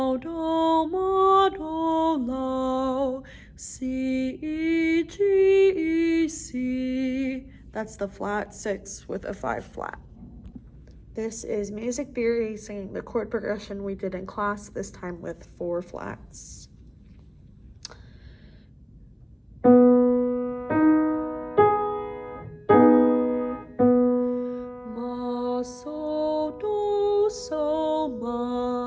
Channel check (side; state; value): both; identical; correlation 1.00